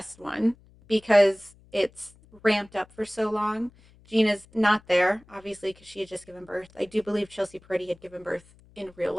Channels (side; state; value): left; noise; hum, 27 dB below the sound